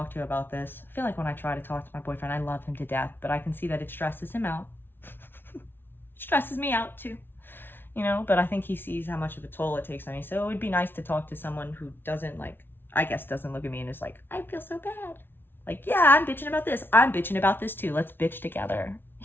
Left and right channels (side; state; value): right; late; 0.10 ms